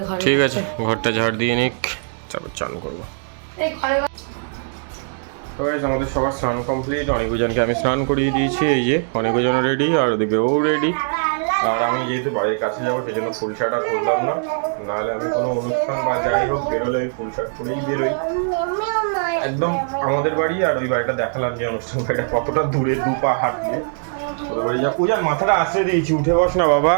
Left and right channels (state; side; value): silent; left; digital silence